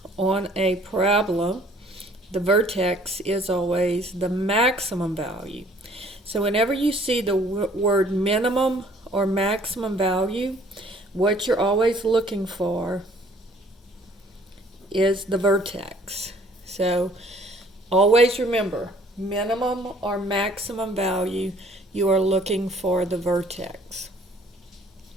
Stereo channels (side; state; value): both; normal; correlation 0.58